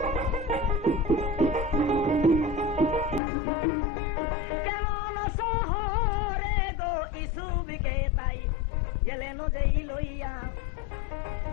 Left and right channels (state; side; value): drops out; right; at 3.2 s